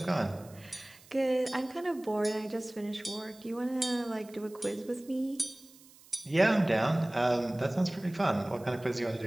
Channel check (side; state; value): right; noise; hiss, 24 dB below the sound